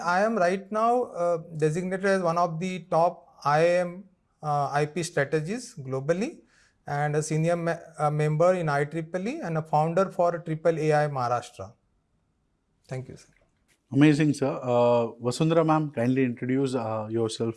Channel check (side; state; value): both; identical; correlation 1.00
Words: am right now designated as one of the top IIM IP strategists globally, and a senior member in IEEE and a founder for Triple AI Maharashtra. Thank you, sir. Amazing, sir. Vasundhara ma'am, kindly introduce yourself.